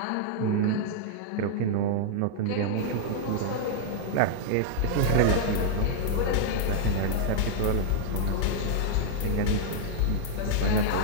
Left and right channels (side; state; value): both; different; correlation -0.01